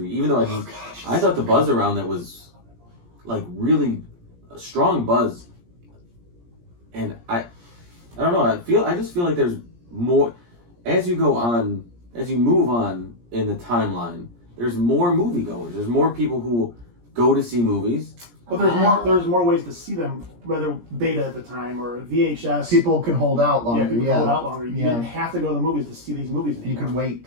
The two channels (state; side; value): late; left; 17 ms